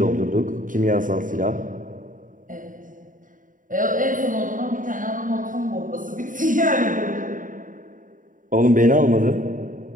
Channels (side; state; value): left; late; 0.39 ms